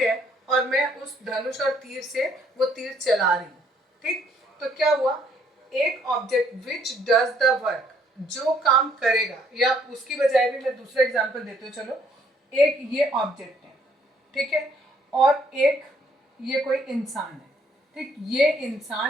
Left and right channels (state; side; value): normal; both; correlation 0.66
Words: है और मैं उस धनुष और तीर से वो तीर चला रही हूँ। ठीक, तो क्या हुआ, एक object which does the work, जो काम करेगा, या उसकी बजाय भी मैं दूसरा एग्जांपल देती हूँ। चलो, एक ये ऑब्जेक्ट है, ठीक है, और एक ये कोई इंसान है। ठीक, ये